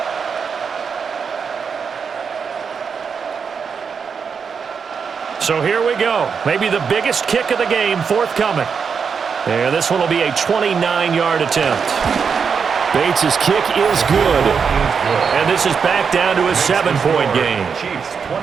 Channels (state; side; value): quieter; left; 6.1 dB